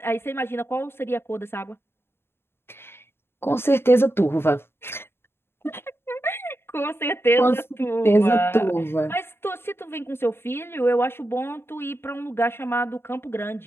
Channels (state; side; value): late; right; 0.11 ms